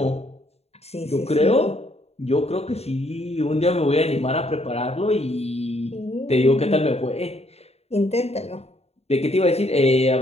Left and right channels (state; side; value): late; right; 0.30 ms